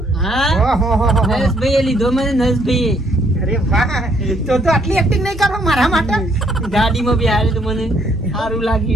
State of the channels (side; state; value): both; normal; correlation 0.68